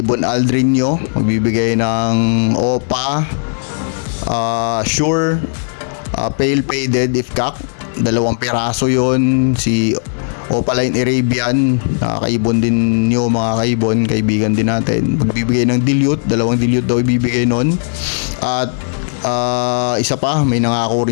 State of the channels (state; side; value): silent; right; digital silence